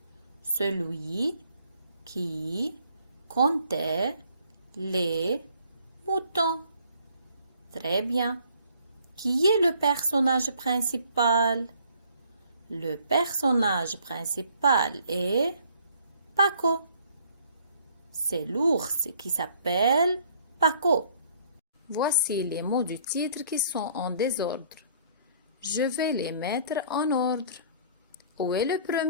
Celui qui comptait les moutons. Très bien. Qui est le personnage principal? Le personnage principal est Paco. C'est l'ours qui s'appelle Paco. Voici les mots du titre qui sont en désordre. Je vais les mettre en ordre. Où est le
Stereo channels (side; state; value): both; inverted; correlation -0.60